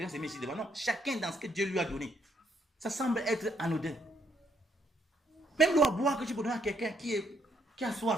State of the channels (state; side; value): normal; both; correlation 0.71